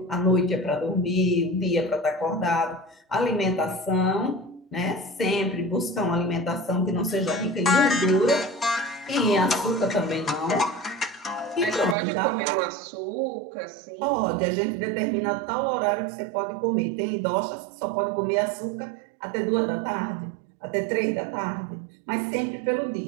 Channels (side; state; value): left; drops out; at 12.0 s